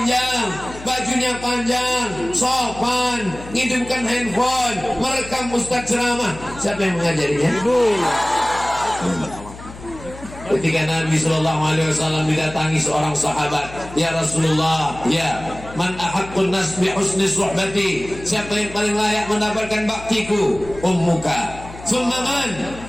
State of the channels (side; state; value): left; noise; hum, 15 dB below the sound